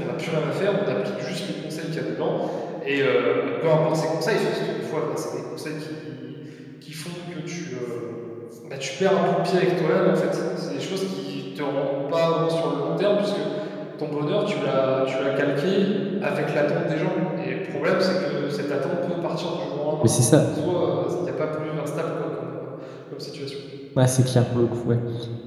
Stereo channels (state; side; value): identical; both; correlation 1.00